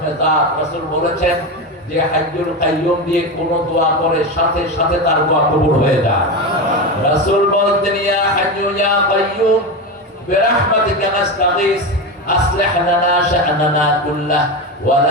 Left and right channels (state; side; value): normal; both; correlation 0.18